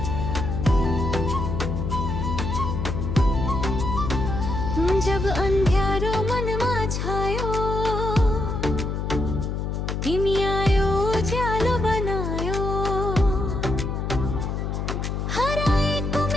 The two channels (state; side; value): noise; left; hum, 2 dB below the sound